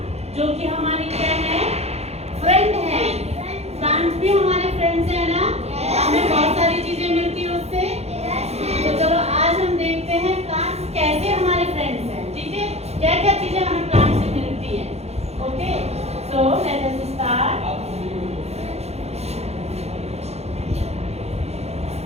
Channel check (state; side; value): late; left; 0.31 ms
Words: जो कि हमारी क्या है? फ्रेंड है। प्लांट्स भी हमारे फ्रेंड्स हैं ना? हमें बहुत सारी चीजें मिलती है उससे। तो चलो आज हम देखते हैं प्लांट्स कैसे हमारे फ्रेंड्स हैं। ठीक है, क्या क्या चीजें हमें प्लांट से मिलती है। Okay, so let us start.